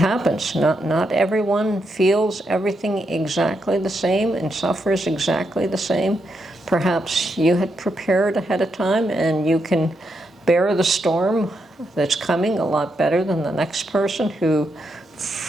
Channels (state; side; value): normal; both; correlation 0.82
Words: Not everyone feels everything exactly the same and suffers exactly the same. Perhaps you had prepared ahead of time and you can bear the storm that's coming a lot better than the next person who